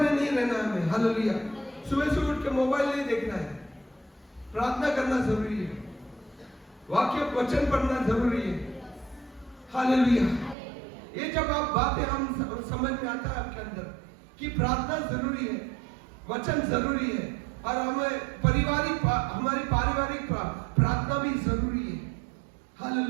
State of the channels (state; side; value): drops out; left; at 10.6 s